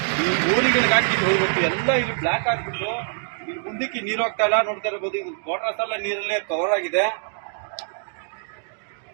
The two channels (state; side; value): silent; left; digital silence